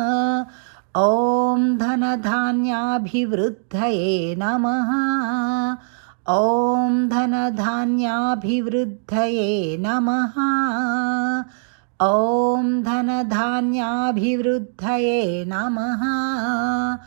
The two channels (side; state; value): left; silent; 64 dB below the other